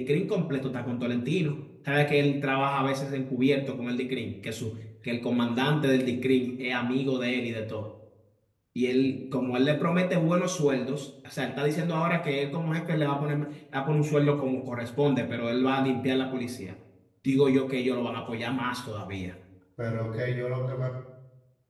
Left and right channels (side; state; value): both; identical; correlation 1.00